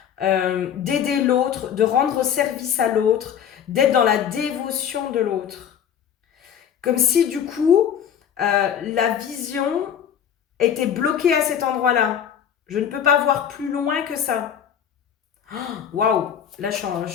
d'aider l'autre, de rendre service à l'autre, d'être dans la dévotion de l'autre. Comme si du coup, la vision était bloquée à cet endroit-là. Je ne peux pas voir plus loin que ça. Waouh! Là, je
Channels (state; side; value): quieter; right; 8.7 dB